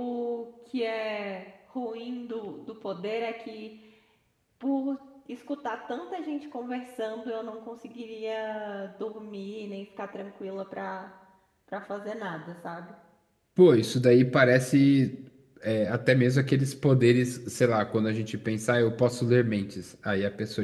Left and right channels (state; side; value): identical; both; correlation 1.00